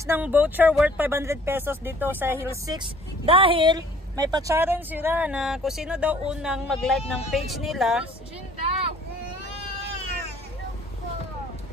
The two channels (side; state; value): both; normal; correlation 0.55